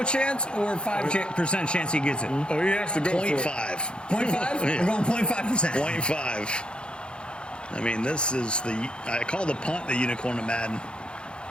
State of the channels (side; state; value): right; late; 0.053 ms